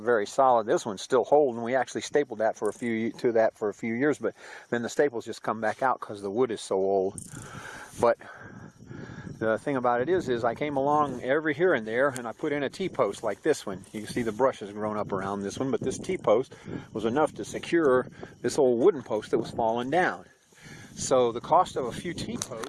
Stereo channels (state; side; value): identical; both; correlation 1.00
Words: very solid. This one's still holding. We actually stapled that for a few years, but then the staples just come back out because the wood is so old. But the thing about it is I came along every here and there and I put in a T-post like this one. You can see the brush has grown up around this one, but this T-post was enough to secure this old wooden post that was falling down. So the cost of a few